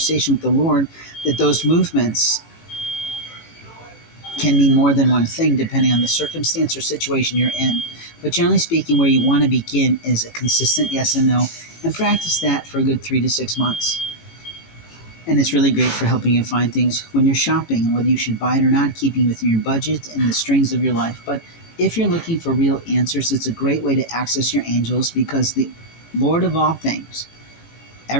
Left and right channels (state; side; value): late; right; 18 ms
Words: with the Lord, that those movements can mean more than one thing depending on the circumstance or situation you're in. But generally speaking, where you want to begin is a consistent yes and no, and practice that for a good 3 to 6 months. And it's really great for helping you find things when you're shopping, and whether you should buy it or not, keeping within your budget and the strings of your life. But if you're looking for real answers, it's a great way to access your angels, because the Lord of all things,